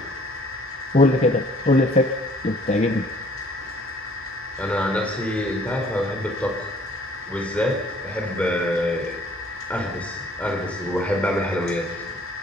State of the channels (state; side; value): normal; both; correlation 0.57